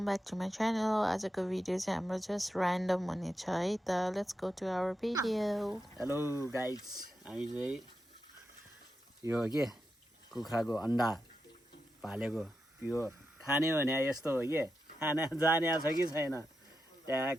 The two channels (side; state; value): both; normal; correlation 0.88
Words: back to my channel. आजको video चाहिँ हाम्रो जस्ट ऱ्यान्डम हुनेछ है त. Let's go to our video. Hello guys, हामी चाहिँ यो के कुखुराको अन्डा भालेको प्योर खाने भने यस्तो हो के खाना जाने छ कि छैन.